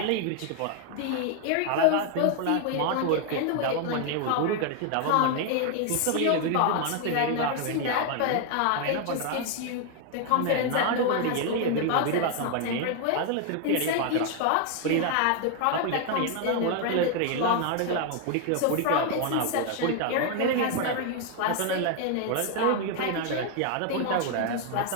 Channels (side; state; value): both; different; correlation 0.00